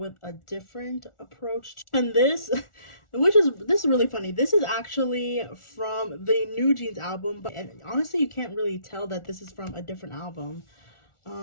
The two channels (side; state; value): right; late; 1.4 ms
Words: a different approach. And this is really funny. This is actually from the New Jeans album, but and honestly, you can't really tell that this is from a different album.